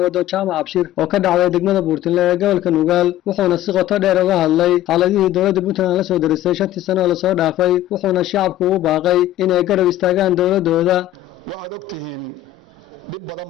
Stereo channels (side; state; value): right; quieter; 13.4 dB